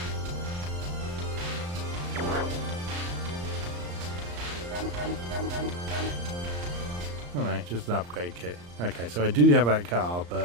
Oh no, just an upgrade kit. Okay, so I do have that car,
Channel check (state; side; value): late; left; 34 ms